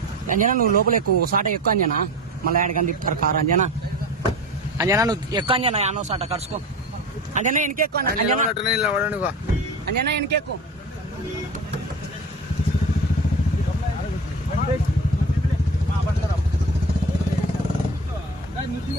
అంజనా నువ్వు లోపల ఎక్కువ సాట ఎక్కువ అంజనా. మళ్ళీ ఆడికని తిప్పుతారు కారు. అంజనా నువ్వు ఎక్కువ అంజనా. యానో సాట కరుసుకో అంజనా. ఎనికెక్కువ అంజనా ఎనికెక్కువ.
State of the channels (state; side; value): normal; both; correlation 0.32